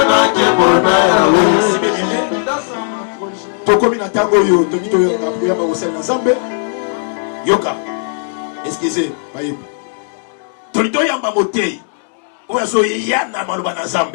Kimbo na yawe. Tokomi na tango yo, tomi to yo na priya ba osel na Nzambe. yoka Excusez, bayebi. tolito yamba motei oyo so yana maloba na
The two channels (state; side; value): silent; right; digital silence